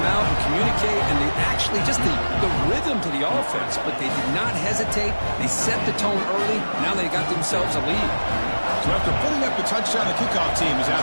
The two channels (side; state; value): both; inverted; correlation -1.00